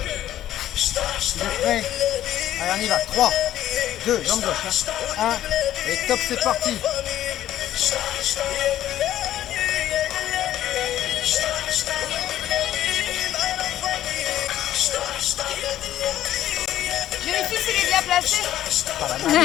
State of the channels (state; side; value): quieter; right; 12.6 dB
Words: Vous êtes prêts? Allez, on y va. 3, 2, jambe gauche. 1. Et top, c'est parti. Vérifie s'il est bien placé. Pas la